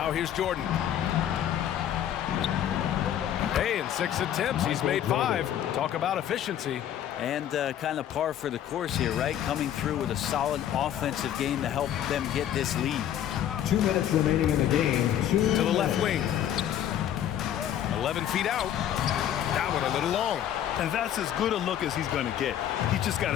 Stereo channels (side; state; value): right; quieter; 10.7 dB